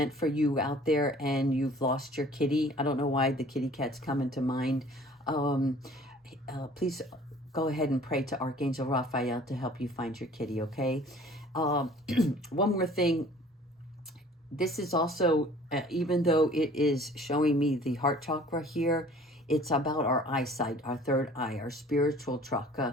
for you out there and you've lost your kitty. I don't know why the kitty cat's come into mind. Please go ahead and pray to Archangel Raphael to help you find your kitty, okay? One more thing. This is also, even though it is showing me the heart chakra here, it's about our eyesight, our third eye, our spiritual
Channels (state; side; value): normal; both; correlation 0.50